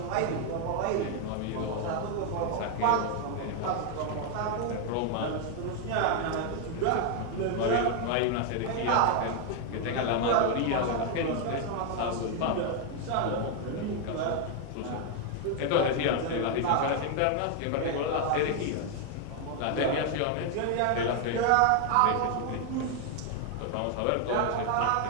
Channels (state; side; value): different; both; correlation 0.01